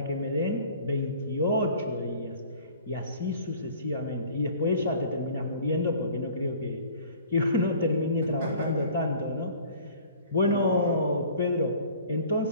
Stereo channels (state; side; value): inverted; both; correlation -0.49